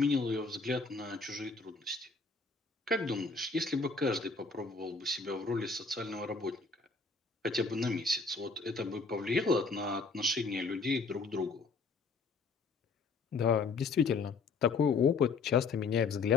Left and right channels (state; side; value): quieter; right; 4.3 dB